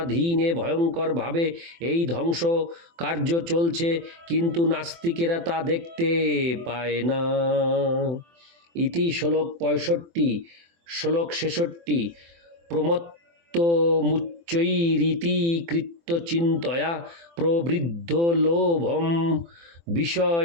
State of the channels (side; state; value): left; late; 24 ms